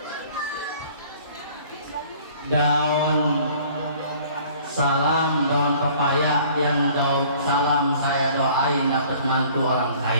Daun salam, daun pepaya, yang daun salam saya doain dapat mantu orang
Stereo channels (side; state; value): both; inverted; correlation -0.53